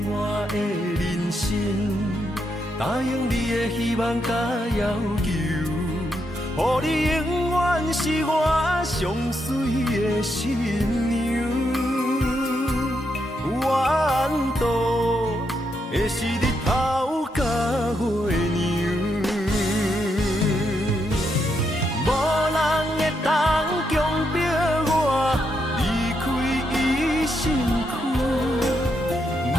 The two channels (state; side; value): normal; both; correlation 0.80